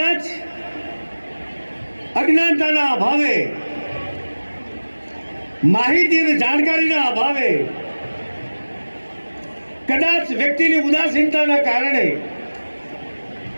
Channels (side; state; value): both; inverted; correlation -1.00